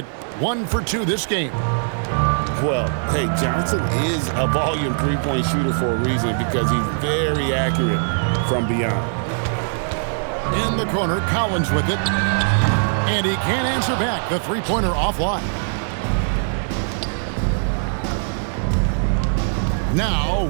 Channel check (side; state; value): left; silent; digital silence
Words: 1 for 2 this game. Well, hey, Johnson is a volume three-point shooter for a reason because he's very accurate from beyond. In the corner, Collins with it. And he can't answer back. The three-pointer offline. Now,